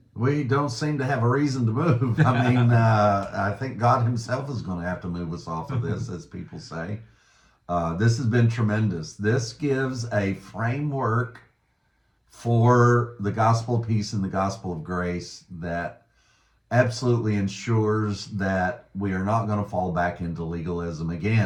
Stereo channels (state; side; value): identical; both; correlation 1.00